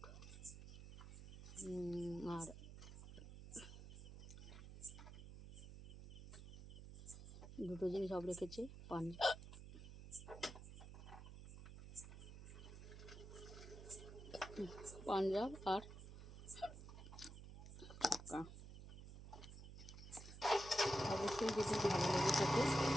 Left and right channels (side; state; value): right; noise; hum, 12 dB below the sound